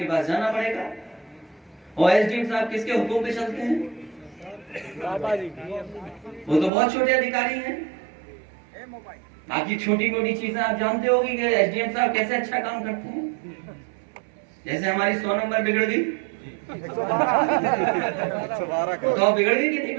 पास जाना पड़ेगा। और एसडीएम साहब किसके हुक्म पे चलते हैं? वो तो बहुत छोटे अधिकारी हैं। बाकी छोटी मोटी चीजें आप जानते होगी कि एसडीएम साहब कैसे अच्छा काम करते हैं। जैसे हमारी 100 नंबर बिगड़ गई तो बिगड़ गई कि नहीं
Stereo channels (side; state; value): left; drops out; at 6.7 s